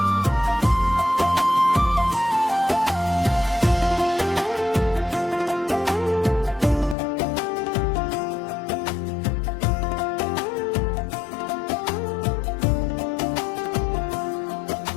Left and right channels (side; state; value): right; drops out; at 7.0 s